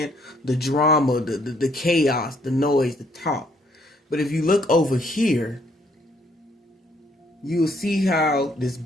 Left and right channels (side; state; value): both; normal; correlation 0.67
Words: The drama, the chaos, the noise, the talk. But if you look over here, you'll see how this